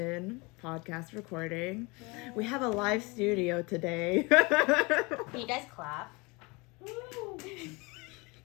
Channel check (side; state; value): right; quieter; 26.7 dB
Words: podcast recording. Yay. We have a live studio today. Can you guys clap? Woo.